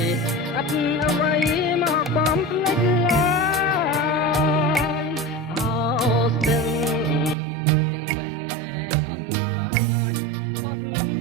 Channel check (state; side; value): drops out; left; at 7.4 s